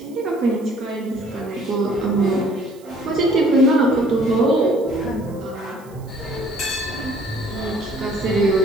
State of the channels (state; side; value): noise; right; hiss, 27 dB below the sound